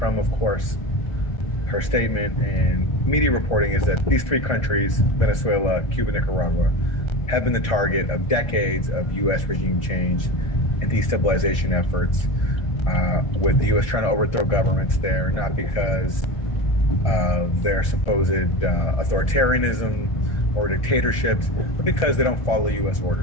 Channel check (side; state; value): right; late; 1.3 ms